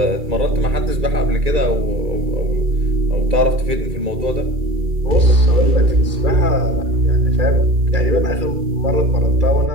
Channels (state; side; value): late; left; 2.3 ms